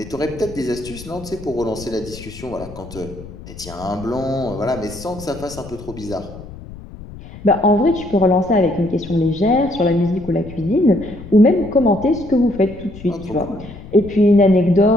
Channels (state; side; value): noise; left; rumble, 15 dB below the sound